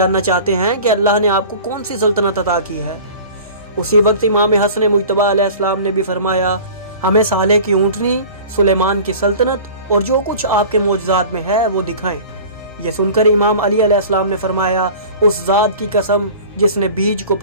چاہتے ہیں کہ اللہ نے آپ کو کون سی سلطنت عطا کی ہے۔ اسی وقت امام حسن مجتبی علیہ السلام نے بھی فرمایا، ہمیں صالح کی اونٹنی، سلیمان کی سلطنت اور جو کچھ آپ کے معجزات میں ہے وہ دکھائیں۔ یہ سن کر امام علی علیہ السلام نے فرمایا، اس ذات کی قسم جس نے بیج کو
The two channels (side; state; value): both; inverted; correlation -0.41